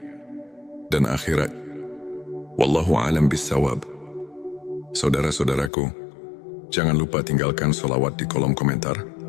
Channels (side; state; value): right; drops out; at 5.7 s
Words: dan akhirat. Wallahu a'lam bissawab. Saudara-saudaraku, jangan lupa tinggalkan sholawat di kolom komentar,